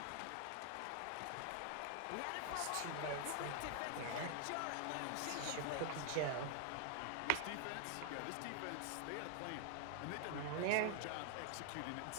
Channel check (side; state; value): both; different; correlation 0.00